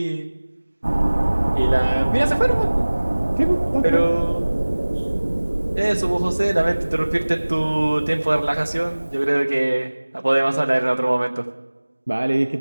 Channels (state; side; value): inverted; both; correlation -1.00